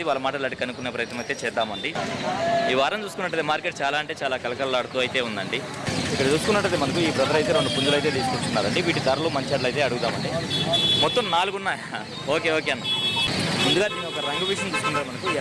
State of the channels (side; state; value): both; identical; correlation 1.00